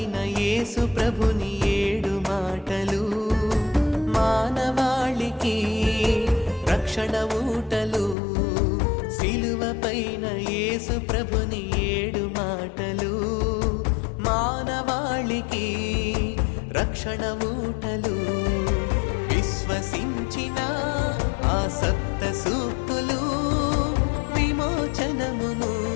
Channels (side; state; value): right; drops out; at 8.2 s